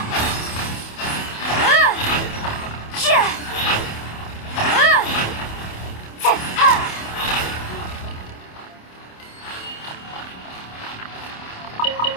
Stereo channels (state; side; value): late; right; 27 ms